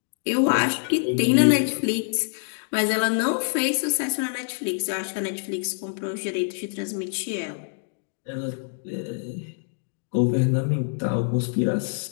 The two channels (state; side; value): silent; right; digital silence